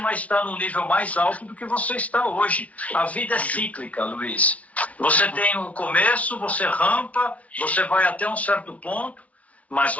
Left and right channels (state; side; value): late; right; 0.067 ms